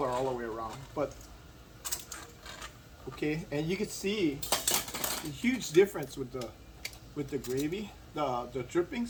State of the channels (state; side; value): identical; both; correlation 1.00